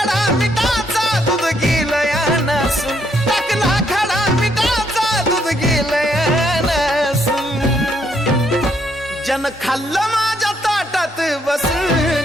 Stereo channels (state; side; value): normal; both; correlation 0.72